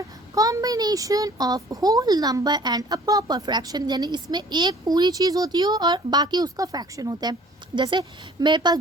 combination of whole number and a proper fraction, यानी इसमें एक पूरी चीज़ होती है और बाकी उसका फ्रैक्शन होता है। जैसे मेरे पास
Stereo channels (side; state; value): both; normal; correlation 0.52